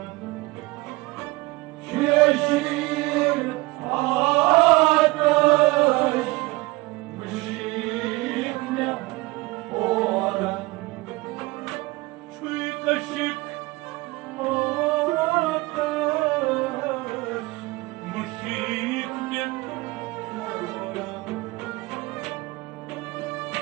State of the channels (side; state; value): left; quieter; 22.2 dB